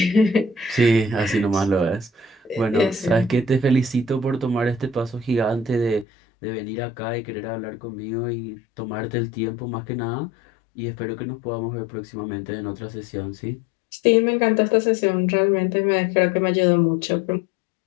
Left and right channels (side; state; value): right; drops out; at 6.1 s